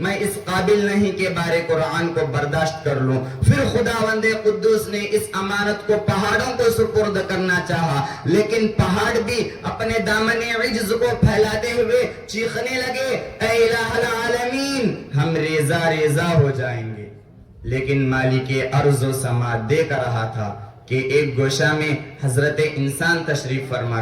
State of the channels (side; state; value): both; identical; correlation 1.00